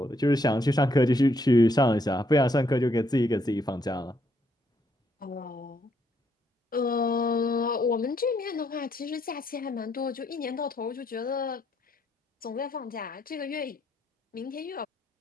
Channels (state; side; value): normal; both; correlation 0.73